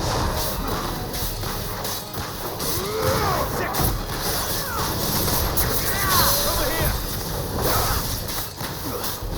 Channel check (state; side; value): identical; both; correlation 1.00